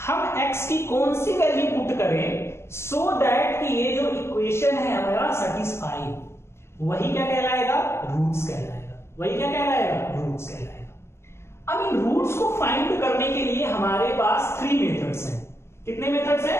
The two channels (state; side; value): late; right; 0.13 ms